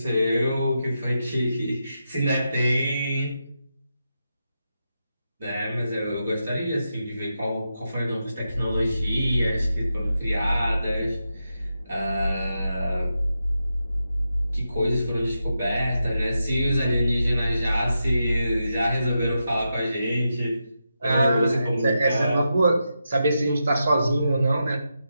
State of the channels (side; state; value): both; inverted; correlation -0.87